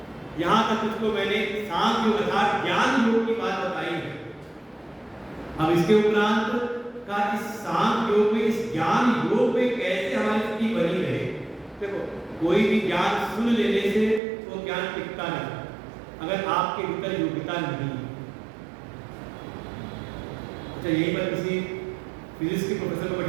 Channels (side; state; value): left; drops out; at 14.2 s